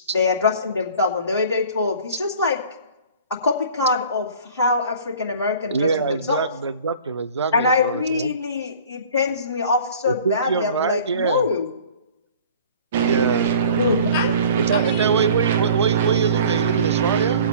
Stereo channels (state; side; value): inverted; both; correlation -0.46